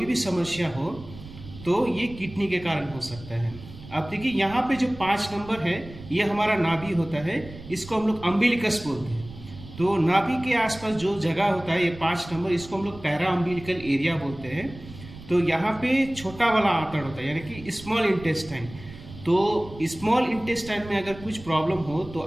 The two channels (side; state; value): right; noise; rumble, 16 dB below the sound